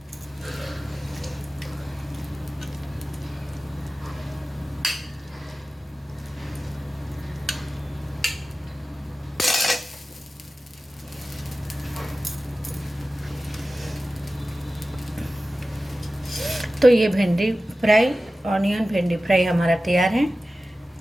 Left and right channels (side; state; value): both; normal; correlation 0.95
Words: तो ये भिंडी फ्राई, ऑनियन भिंडी फ्राई हमारा तैयार है।